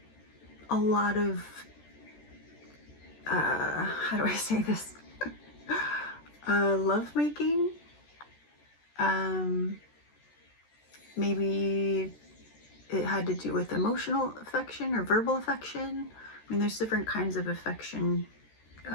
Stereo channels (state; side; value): late; right; 13 ms